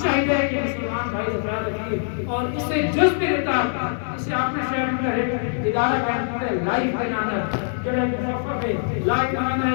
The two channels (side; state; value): right; silent; 60 dB below the other